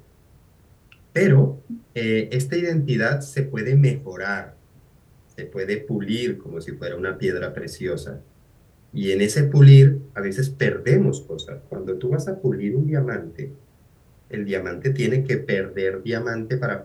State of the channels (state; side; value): identical; both; correlation 1.00